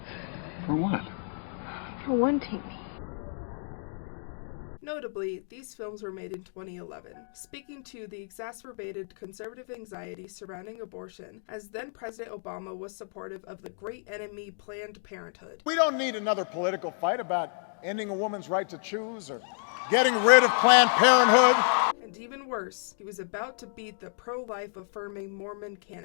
For what? For wanting me. Notably, these films were made in 2011, speaking to the exacerbated conservative anxiety surrounding abortion, as then-President Obama was supportive of the great enemy Planned Parenthood. We don't need another political fight about ending a woman's right to choose or getting rid of Planned Parenthood. And even worse, he was about to beat the pro-life affirming Mormon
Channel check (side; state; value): right; silent; digital silence